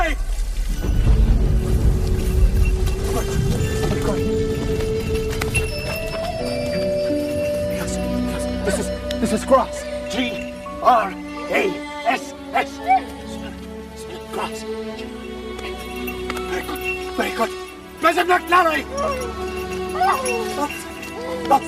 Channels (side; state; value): both; identical; correlation 1.00